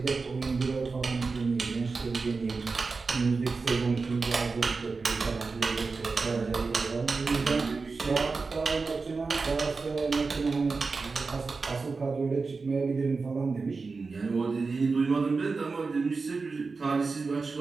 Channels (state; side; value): quieter; left; 4.3 dB